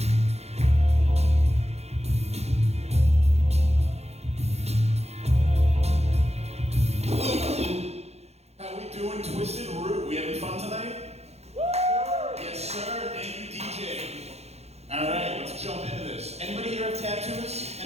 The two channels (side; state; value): left; late; 0.31 ms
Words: How we doing, Twisted Root? We having fun tonight? Yes, sir. Thank you, DJ. All right, let's jump into this. Anybody here have tattoos?